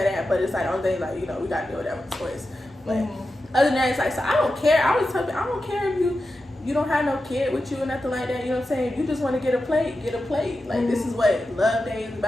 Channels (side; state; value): both; normal; correlation 0.91